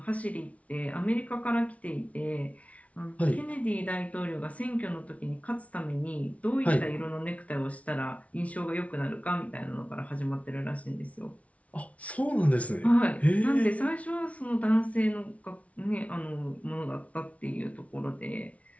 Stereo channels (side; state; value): right; late; 0.066 ms